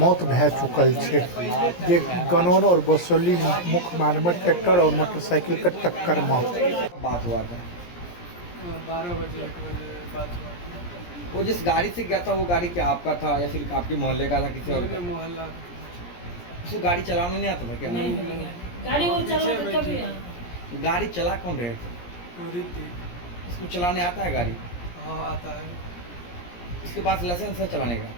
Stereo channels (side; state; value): right; late; 17 ms